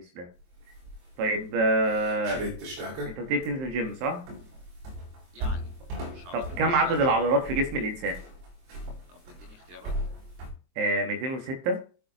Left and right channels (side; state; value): left; late; 23 ms